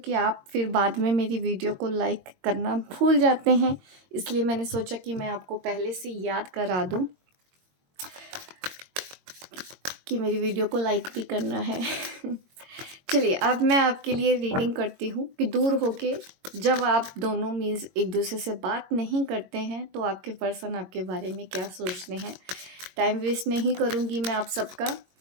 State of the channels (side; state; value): left; late; 22 ms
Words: आप फिर बाद में मेरी वीडियो को लाइक करना भूल जाते हैं। इसलिए मैंने सोचा कि मैं आपको पहले से याद करा दूं कि मेरी वीडियो को लाइक भी करना है। चलिए, अब मैं आपके लिए रीडिंग करती हूँ कि दूर होके जब आप दोनों मीन्स एक दूसरे से बात नहीं करते हैं तो आपके पर्सन आपके बारे में क्या सोचते हैं। टाइम वेस्ट नहीं करूँगी मैं आप सबका।